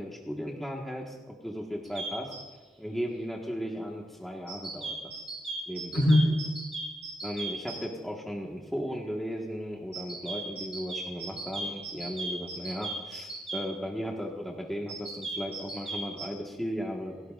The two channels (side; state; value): both; normal; correlation 0.85